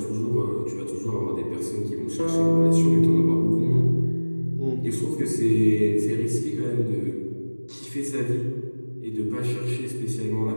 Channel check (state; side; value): inverted; both; correlation -1.00